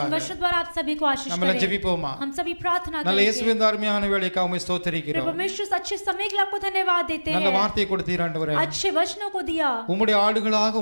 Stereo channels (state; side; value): inverted; both; correlation -1.00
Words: वचन द्वारा आप सभी को आशीष நம்ம எல்லாம் करें. ஜெபிப்போமா? हम सभी प्रार्थना நல்ல करेंगे. இயேசுவின் அருமையான வேளைக்காக உம்மை ஸ்தோத்திரிக்கிறோம். परमेश्वर इस अच्छे समय के लिए आपको धन्यवाद देते நல்ல हैं. வார்த்தையை கொடுத்தீர் ஆண்டவரே. अच्छे वचनों को दिया, உம்முடைய ஆடுகளாக